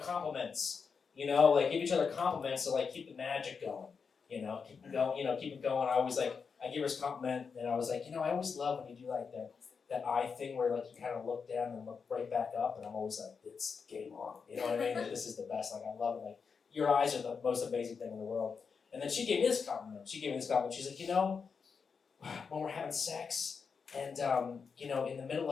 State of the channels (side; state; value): right; quieter; 5.7 dB